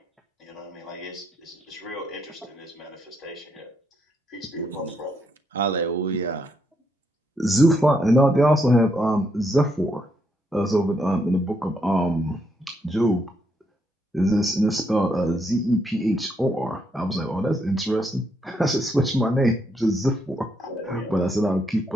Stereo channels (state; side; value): normal; both; correlation 0.76